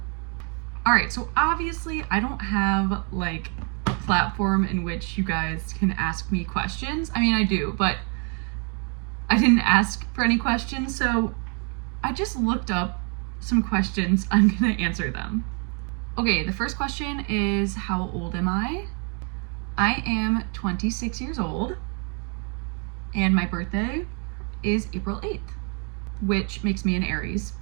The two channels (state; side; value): quieter; left; 37.6 dB